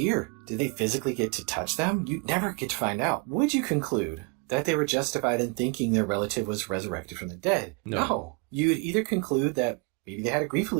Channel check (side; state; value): left; quieter; 30.8 dB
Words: Did they physically get to touch them? You never get to find out. Would you conclude that they were justified in thinking their relative was resurrected from the dead? No. You would either conclude that maybe they had a grief